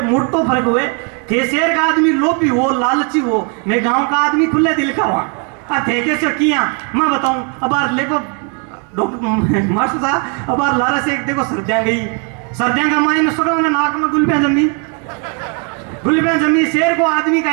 मोटो फर्क हुए। थे शेर का आदमी लोभी हो, लालची हो, मैं गांव का आदमी खुले दिल का हुआ थे कैसे किया मैं बताऊं। अब देखो डॉक्टर मास्टर साहब अब लारा से एक देखो सर्दियां का माइन सुगल में नाक में गुलबियां जमी, शेर को आदमी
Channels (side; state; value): left; quieter; 36.4 dB